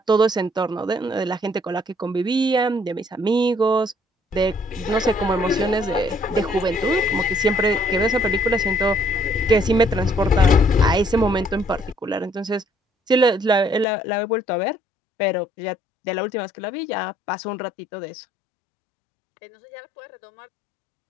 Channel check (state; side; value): drops out; right; at 13.9 s